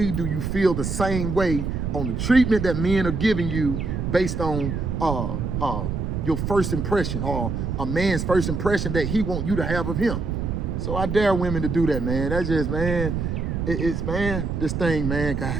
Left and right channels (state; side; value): noise; right; rumble, 2 dB below the sound